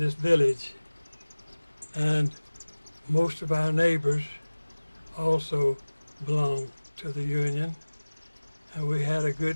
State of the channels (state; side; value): inverted; both; correlation -1.00